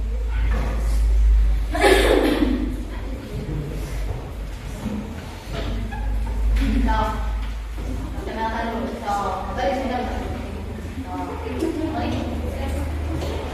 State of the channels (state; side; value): identical; both; correlation 1.00